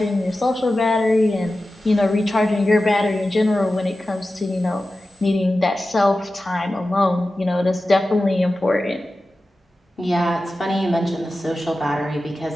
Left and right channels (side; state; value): both; normal; correlation 0.94